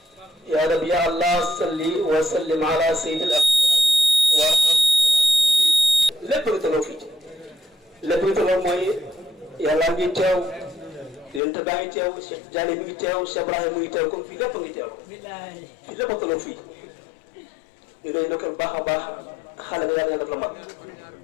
يا رب يا الله صل وسلم على سيد الأقوام lépp nga toloo fii lépp nga toloo mooy yàlla ngi teew yonent baa ngi teew Cheikh Diané mi ngi teew Cheikh Ibrahima mi ngi teew comme fii lépp ngi teew fii lépp a toloo fii ñu doy ndokkal baax a baax xale nga yàlla def la mag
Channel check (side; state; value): right; drops out; at 11.4 s